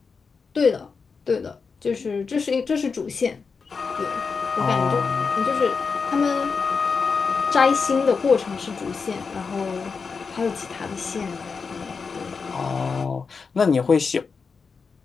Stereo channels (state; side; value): quieter; right; 5.1 dB